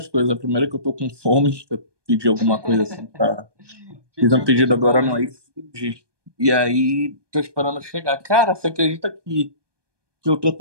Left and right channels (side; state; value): left; late; 1.2 ms